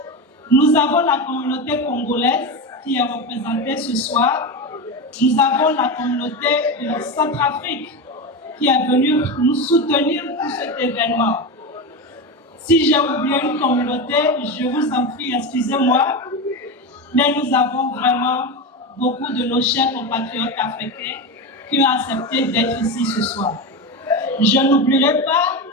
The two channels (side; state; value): both; normal; correlation 0.19